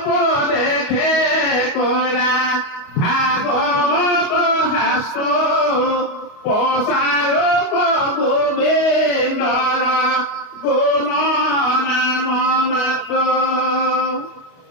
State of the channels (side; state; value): right; late; 28 ms